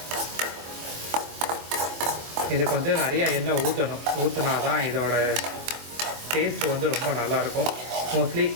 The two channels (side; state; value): left; late; 24 ms